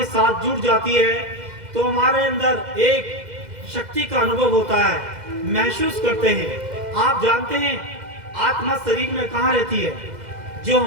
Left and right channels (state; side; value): late; left; 2.0 ms